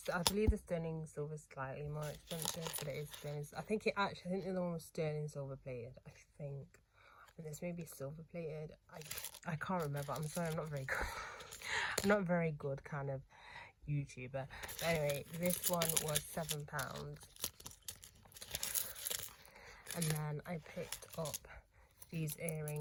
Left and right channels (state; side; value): identical; both; correlation 1.00